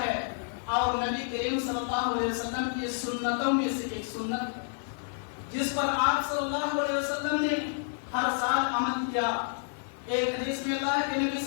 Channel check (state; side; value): silent; right; digital silence